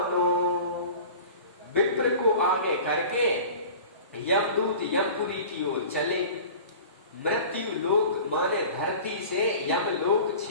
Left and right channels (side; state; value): both; inverted; correlation -0.40